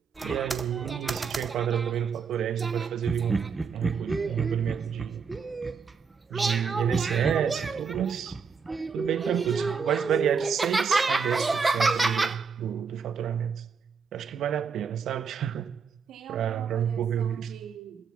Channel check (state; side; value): quieter; left; 5.9 dB